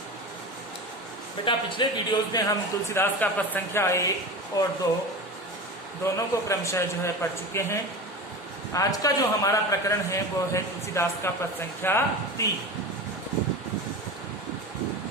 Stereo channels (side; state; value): both; normal; correlation 0.29